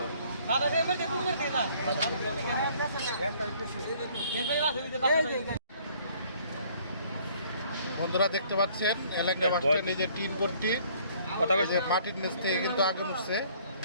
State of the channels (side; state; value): both; inverted; correlation -0.59